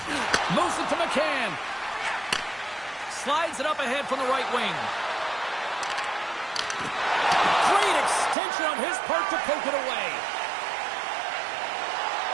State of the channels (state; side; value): drops out; left; at 8.3 s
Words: Moves it to McCann. Slides it up ahead from the right wing. Great extension on his part to poke it away.